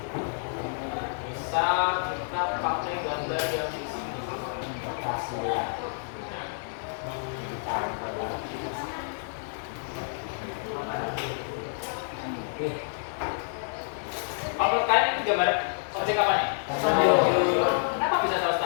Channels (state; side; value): silent; right; digital silence